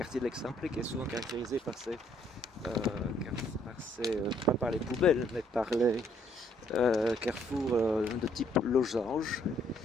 de l'Eixample, qui est souvent caractérisé par pas par les poubelles, mais par les carrefours de type losange.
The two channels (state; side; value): normal; both; correlation 0.67